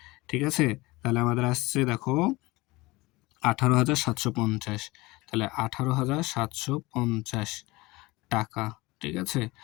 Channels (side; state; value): right; quieter; 21.9 dB